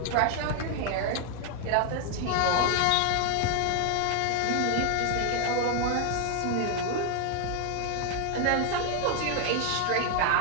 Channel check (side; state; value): both; different; correlation 0.00